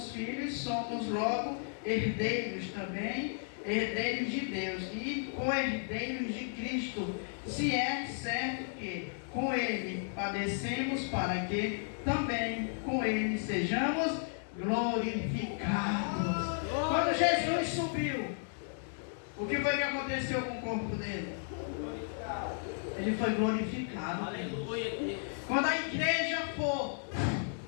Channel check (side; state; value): right; silent; digital silence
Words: filhos, somos logo herdeiros também, herdeiros de Deus e co-herdeiros de Cristo, se é certo que com Ele padecemos, para que também com Ele sejamos glorificados. Quando Jesus subiu, o que foi que aconteceu com o corpo dele? Ele foi glorificado. Aleluia. Quando a igreja for,